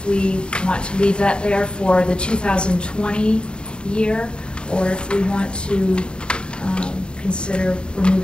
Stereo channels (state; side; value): late; right; 0.051 ms